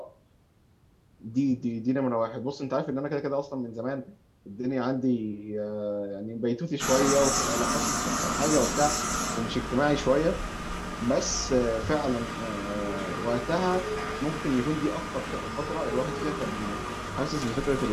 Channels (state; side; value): identical; both; correlation 1.00